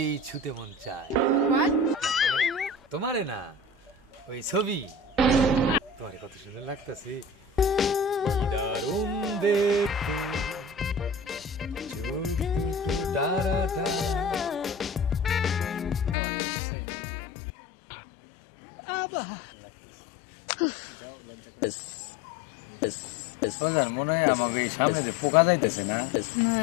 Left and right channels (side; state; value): right; drops out; at 16.2 s